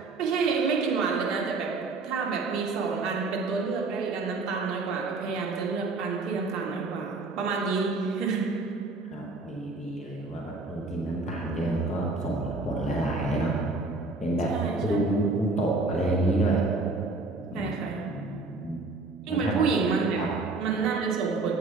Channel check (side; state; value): left; quieter; 3.5 dB